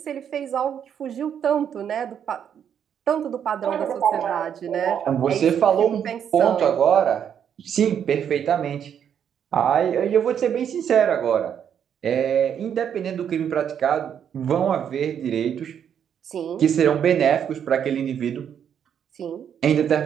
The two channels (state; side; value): quieter; left; 8.6 dB